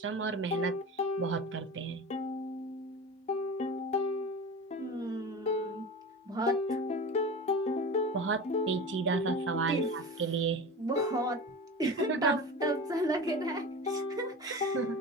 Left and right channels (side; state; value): both; normal; correlation 0.30